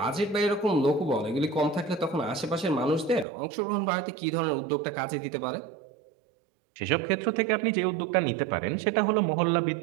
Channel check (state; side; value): drops out; left; at 3.2 s